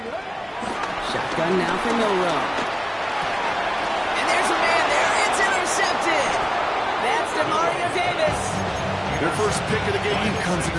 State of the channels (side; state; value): both; identical; correlation 1.00